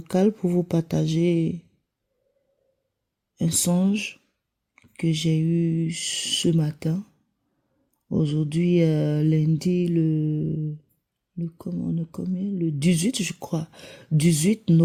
pour vous partager un songe que j'ai eu ce matin. Aujourd'hui, lundi, le 18, je crois, 18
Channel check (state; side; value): identical; both; correlation 1.00